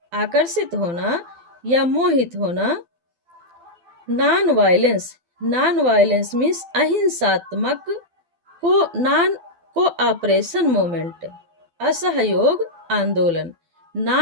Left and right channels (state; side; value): late; left; 12 ms